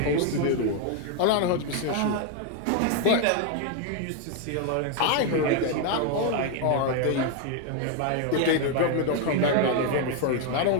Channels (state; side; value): different; both; correlation 0.01